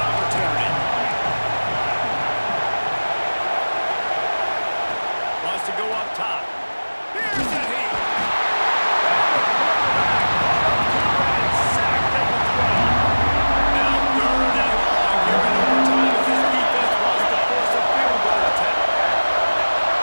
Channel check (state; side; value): inverted; both; correlation -1.00